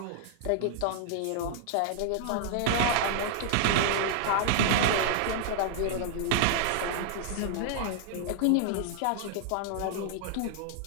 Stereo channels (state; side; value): different; both; correlation -0.01